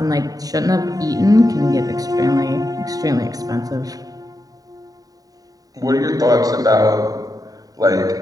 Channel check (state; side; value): late; left; 0.18 ms